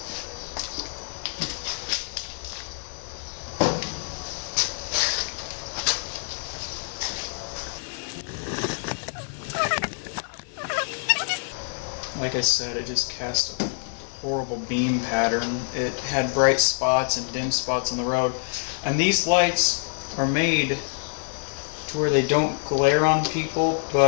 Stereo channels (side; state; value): right; silent; digital silence